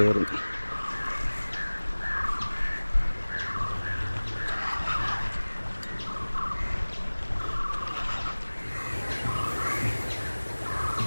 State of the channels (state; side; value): inverted; both; correlation -1.00